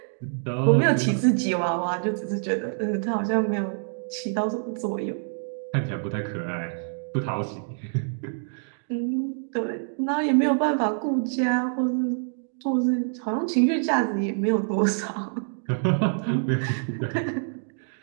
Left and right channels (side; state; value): left; silent; digital silence